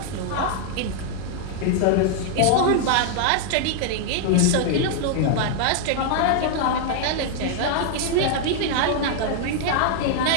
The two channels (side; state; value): both; different; correlation 0.00